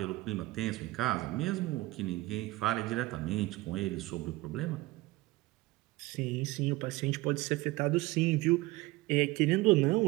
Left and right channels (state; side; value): quieter; left; 20.0 dB